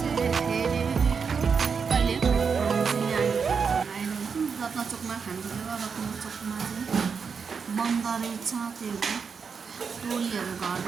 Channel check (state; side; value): quieter; left; 5.9 dB